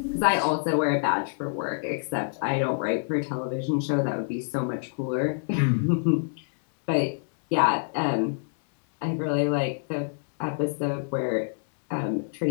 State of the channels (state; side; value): silent; right; digital silence